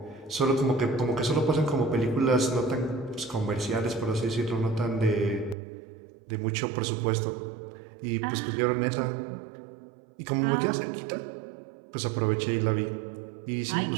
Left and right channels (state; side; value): drops out; left; at 5.6 s